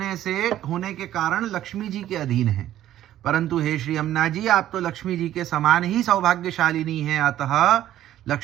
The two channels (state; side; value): quieter; left; 12.6 dB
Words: के कारण लक्ष्मी जी के अधीन है। परंतु हे श्री यमुना जी, आप तो लक्ष्मी जी के समान ही सौभाग्यशालिनी हैं, अतः